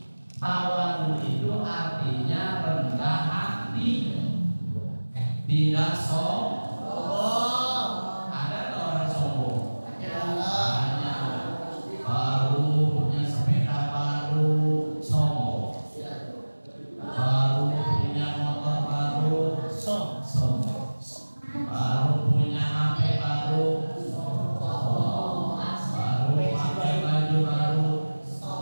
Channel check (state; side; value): inverted; both; correlation -1.00